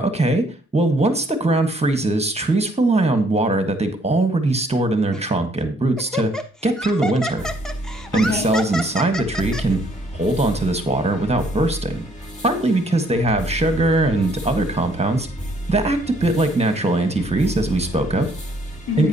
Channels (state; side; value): normal; both; correlation 0.66